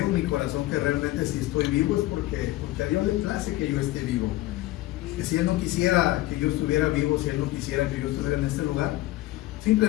mi corazón que realmente si estoy vivo es porque a Dios le place que yo esté vivo. Que si Él no quisiera que yo estuviera vivo, si Él no quisiera que yo estuviera en este lugar,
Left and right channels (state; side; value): quieter; right; 17.2 dB